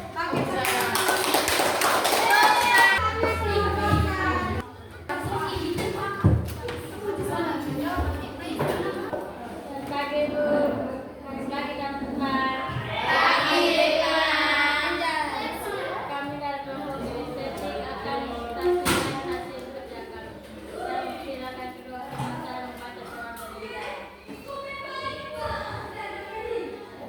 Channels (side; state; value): both; identical; correlation 1.00